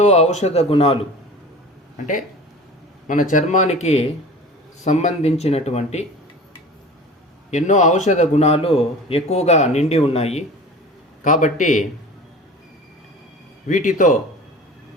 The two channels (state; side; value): normal; both; correlation 0.38